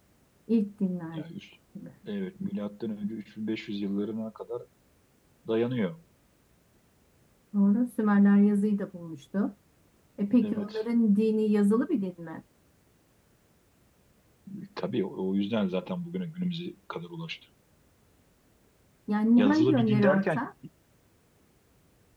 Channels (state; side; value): identical; both; correlation 1.00